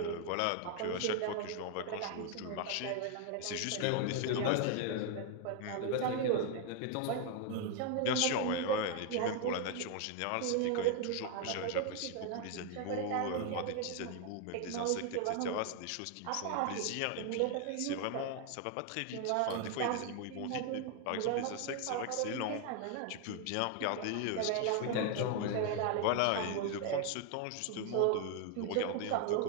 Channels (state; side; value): different; both; correlation 0.00